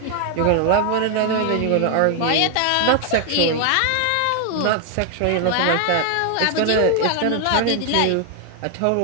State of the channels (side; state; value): both; different; correlation 0.00